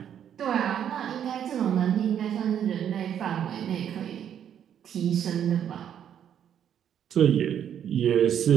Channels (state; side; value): quieter; left; 9.3 dB